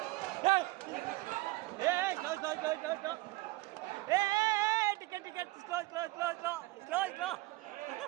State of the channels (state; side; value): quieter; left; 20.3 dB